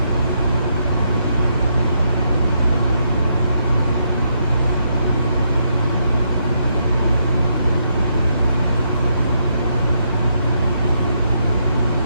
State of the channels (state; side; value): inverted; both; correlation -0.78